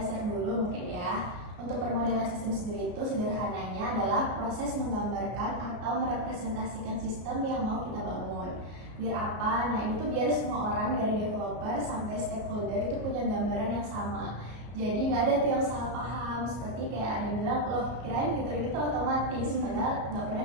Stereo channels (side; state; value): left; late; 33 ms